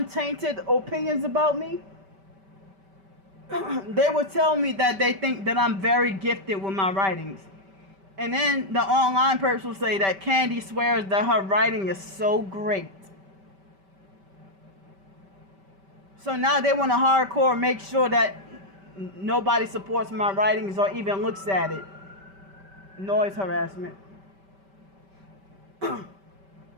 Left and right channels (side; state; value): left; late; 5.2 ms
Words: opinions about me, they would tell me that they think that I'm very gifted with my writings. And then the online person will say that Candy swears that her writing is so great. So now they want to hardcore make sure that nobody supports my writings or even looks at it. Noise harassment.